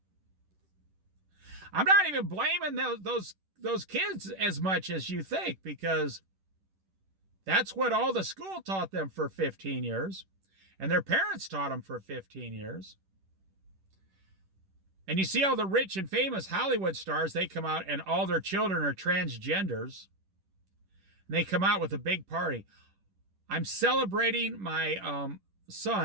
I'm not even blaming those kids as much as you think, because that's what all the school taught them for 15 years. And their parents taught them for 15 years. And you see all the rich and famous Hollywood stars, they come out and all their children are transgenders. And they come out with a big party. I'm celebrating my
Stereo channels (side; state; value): left; late; 10 ms